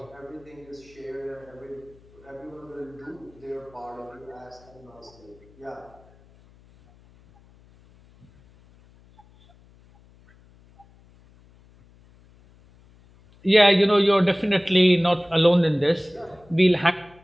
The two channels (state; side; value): noise; left; hum, 28 dB below the sound